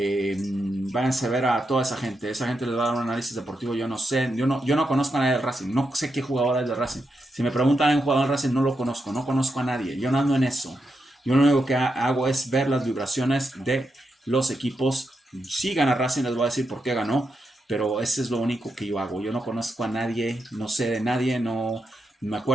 a ver a toda esa gente les va a dar un análisis deportivo. Yo no sé, yo no conozco a nadie del Racing, no sé qué jugador es del Racing. Si me preguntan a un jugador del Racing, no lo conozco, no conozco a nadie, yo no ando en eso. Yo lo único que hago es ver las vibraciones de los equipos. Si gana Racing, les voy a decir por qué ganó, pero ese es lo único que yo hago. Yo no conozco a nadie, no sé de nadie, no me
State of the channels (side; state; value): both; normal; correlation 0.85